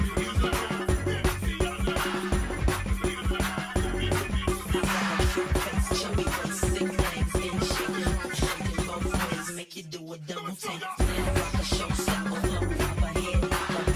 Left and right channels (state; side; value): identical; both; correlation 1.00